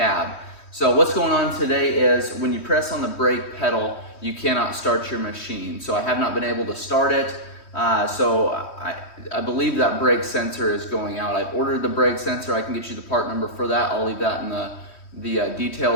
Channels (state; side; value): late; right; 3.1 ms